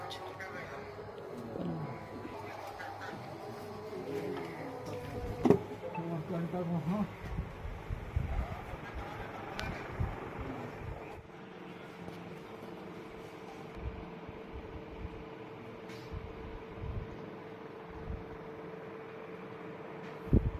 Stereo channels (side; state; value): both; identical; correlation 1.00